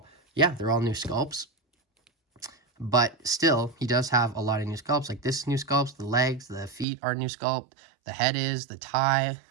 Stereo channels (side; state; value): left; drops out; at 6.9 s